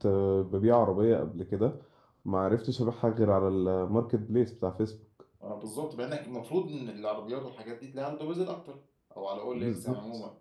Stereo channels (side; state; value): both; identical; correlation 1.00